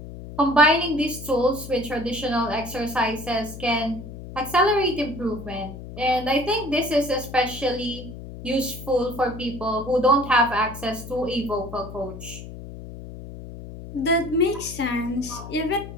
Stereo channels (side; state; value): left; noise; hum, 12 dB below the sound